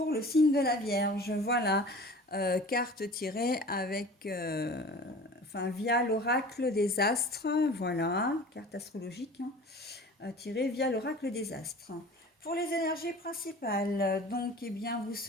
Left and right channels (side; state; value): both; normal; correlation 0.41